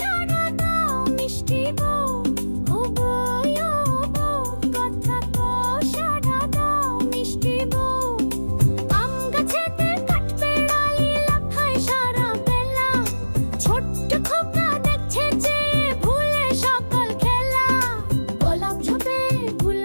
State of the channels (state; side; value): inverted; both; correlation -1.00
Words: দাও মিষ্টি বউ। ও বউ, কথা কো সাড়া দাও মিষ্টি বউ। আম গাছেতে কাঠবেড়ালি লাফায় সারা বেলা, ছোট্ট খোকা দেখছে যে ভুলে সকল খেলা। গোলাপ ঝোপে